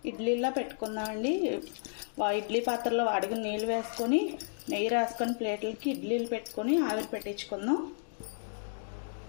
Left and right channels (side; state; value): right; silent; digital silence